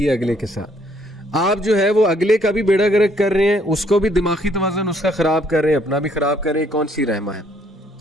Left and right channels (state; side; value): normal; both; correlation 0.66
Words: ہے اگلے کے ساتھ؟ آپ جو ہے وہ اگلے کا بھی بیڑا گرک کر رہے ہیں, اس کو بھی دماغی توازن اس کا خراب کر رہے ہیں, اپنا بھی خراب کر رہے ہیں. کون سی رحمہ ہے؟